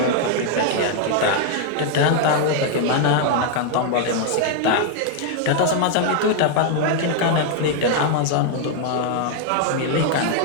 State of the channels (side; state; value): both; different; correlation 0.00